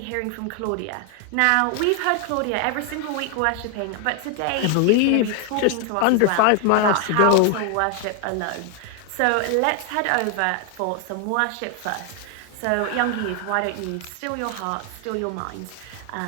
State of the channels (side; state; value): both; different; correlation 0.01